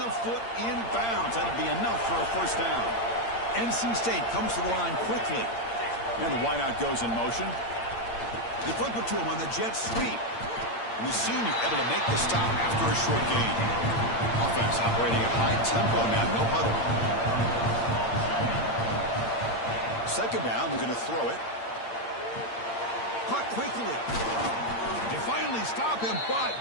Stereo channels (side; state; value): right; late; 8.7 ms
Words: foot in bounds. That'd be enough for a first down. NC State comes to the line quickly. And the wideout goes in motion. They flip it to him on the jet sweep. And the senior able to make the stop after a short gain. Offense operating at high tempo now. No huddle. 2nd down. They're going to throw it. Caught quickly. They finally stop him, but